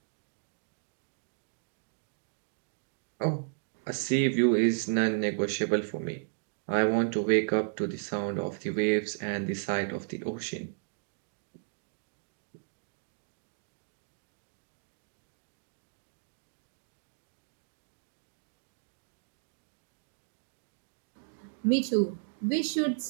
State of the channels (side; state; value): left; silent; digital silence